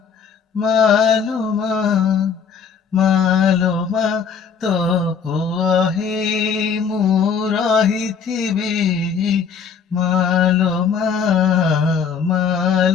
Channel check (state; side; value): quieter; right; 6.4 dB